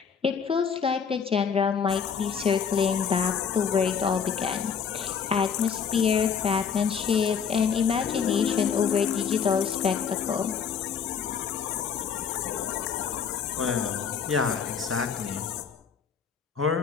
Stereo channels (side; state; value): right; quieter; 6.7 dB